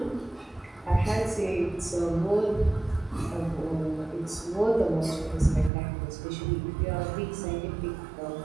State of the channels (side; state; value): left; drops out; at 5.7 s